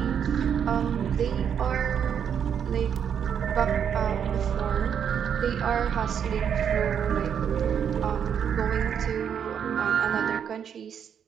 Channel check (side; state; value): left; quieter; 8.1 dB